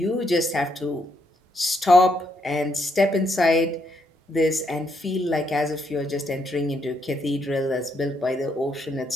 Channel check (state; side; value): normal; both; correlation 0.76